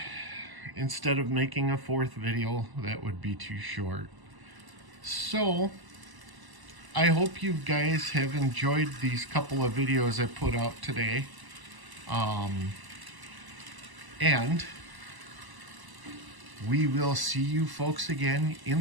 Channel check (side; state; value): left; late; 1.0 ms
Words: instead of making a fourth video, that would be too short. So I hope you guys have enjoyed these couple of videos I put out today. And we will see you folks again